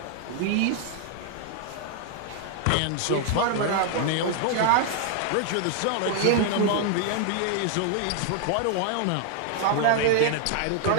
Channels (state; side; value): different; both; correlation 0.00